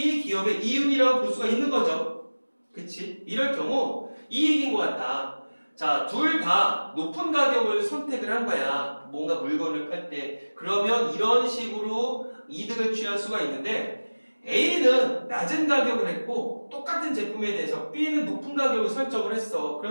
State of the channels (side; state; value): both; inverted; correlation -1.00